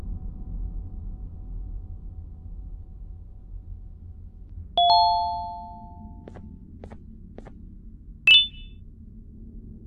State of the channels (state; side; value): identical; both; correlation 1.00